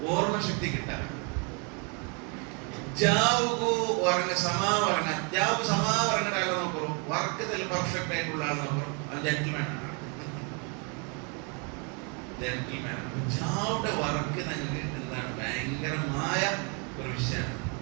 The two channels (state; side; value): quieter; left; 34.8 dB